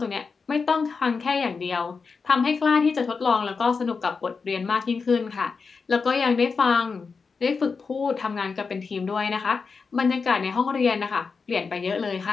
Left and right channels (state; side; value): quieter; right; 5.0 dB